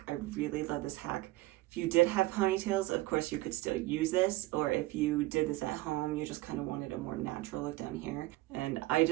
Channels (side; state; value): left; quieter; 19.2 dB